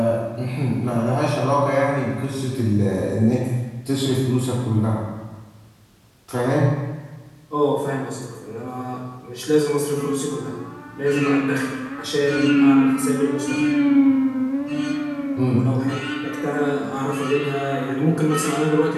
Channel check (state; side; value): identical; both; correlation 1.00